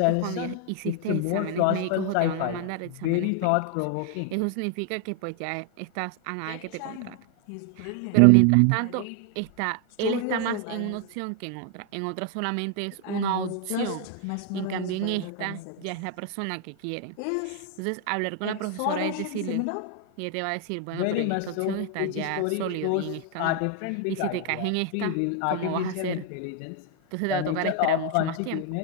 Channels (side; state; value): both; different; correlation 0.00